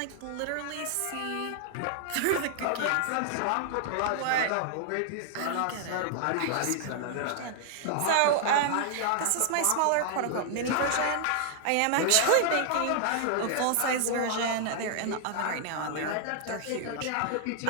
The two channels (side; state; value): both; different; correlation 0.00